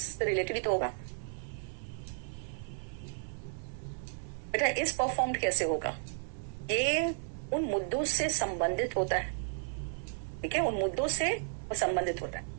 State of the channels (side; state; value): left; silent; 55 dB below the other